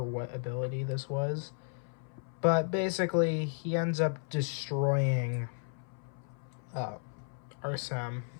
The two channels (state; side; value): silent; right; 55 dB below the other